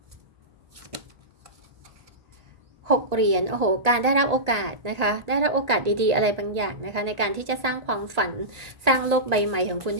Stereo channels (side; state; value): left; late; 1.8 ms